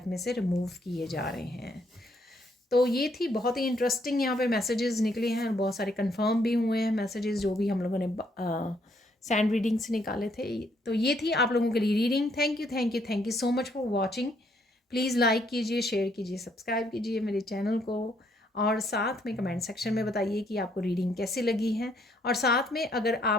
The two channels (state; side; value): normal; both; correlation 0.70